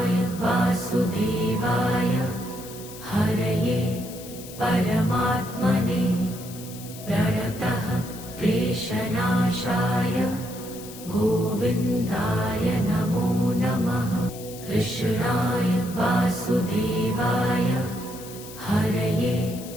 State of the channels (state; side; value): noise; left; hiss, 15 dB below the sound